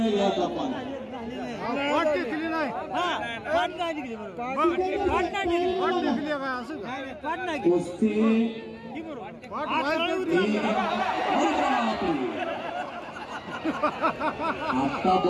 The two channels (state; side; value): identical; both; correlation 1.00